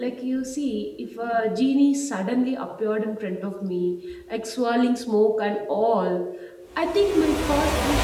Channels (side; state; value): both; identical; correlation 1.00